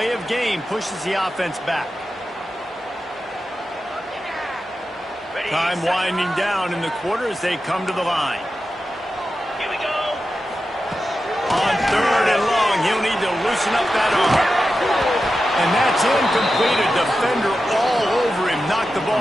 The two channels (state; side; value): normal; both; correlation 0.91